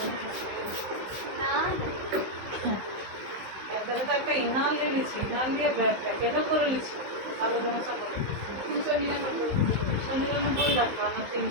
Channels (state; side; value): late; left; 15 ms